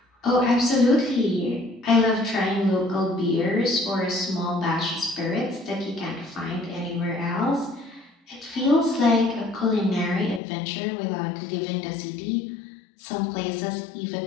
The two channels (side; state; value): right; drops out; at 10.4 s